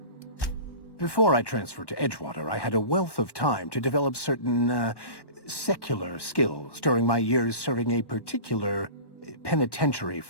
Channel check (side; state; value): right; late; 1.1 ms